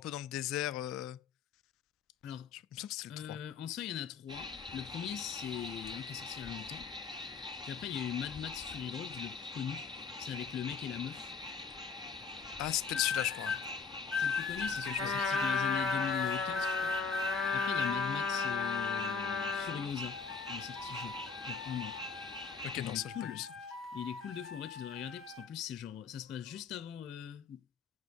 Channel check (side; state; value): right; quieter; 5.6 dB